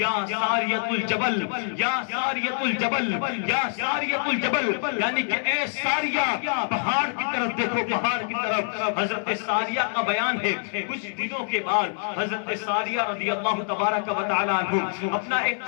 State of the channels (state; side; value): silent; right; digital silence